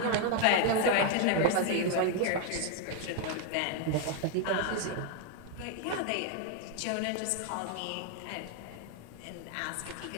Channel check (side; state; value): both; different; correlation 0.00